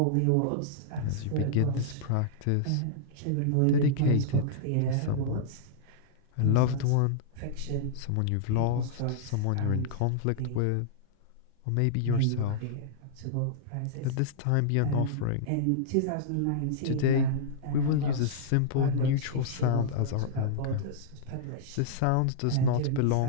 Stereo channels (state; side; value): different; both; correlation -0.02